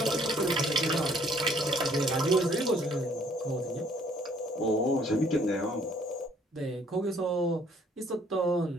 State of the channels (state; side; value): normal; both; correlation 0.62